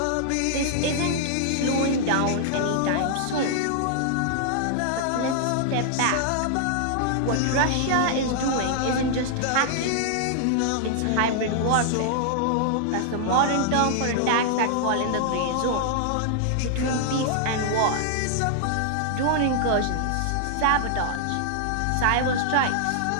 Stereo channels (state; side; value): different; both; correlation -0.01